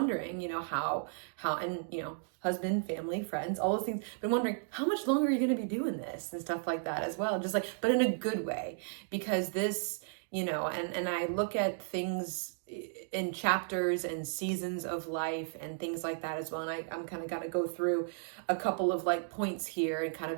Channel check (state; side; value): silent; left; digital silence